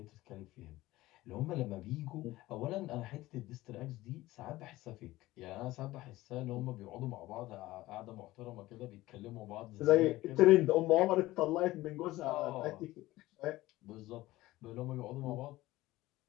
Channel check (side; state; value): right; quieter; 17.6 dB